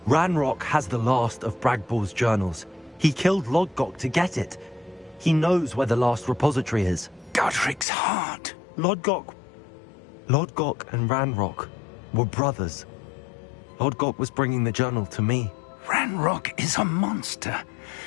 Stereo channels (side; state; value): right; drops out; at 7.9 s